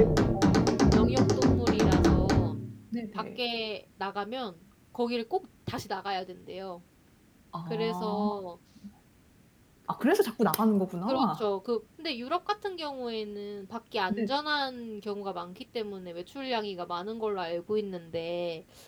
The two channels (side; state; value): both; identical; correlation 1.00